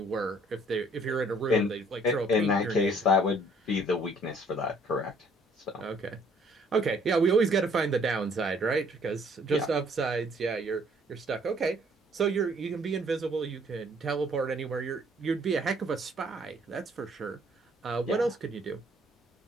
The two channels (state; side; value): normal; both; correlation 0.61